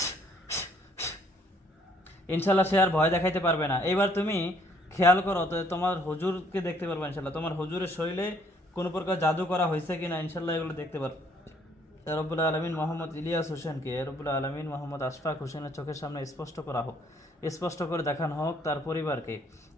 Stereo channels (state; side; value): normal; both; correlation 0.64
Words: ইনশাল্লাহ সে আর ভয় দেখাইতে পারবে না। এবার তুমি খেয়াল করো তো, তোমার হুজুরকে দেখতে পারবে ইনশাল্লাহ, তোমার হুজুরের শরীরে কোনো প্রকার জাদু করা হয়েছে কিনা ইনশাল্লাহ এগুলো দেখতে পারবে। রব্বুল আলমিন মোহাম্মদ ইলিয়াস হোসেনকে রব্বুল আলমিন মোহাম্মদ আশফাক হোসেনের চোখের সামনে স্পষ্ট করা হোক, স্পষ্ট করে দেখানো হোক তার পরিবারকে।